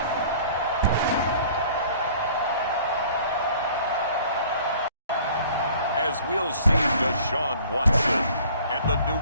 As we'll see Deshaun Watson and the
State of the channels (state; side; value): inverted; both; correlation -0.51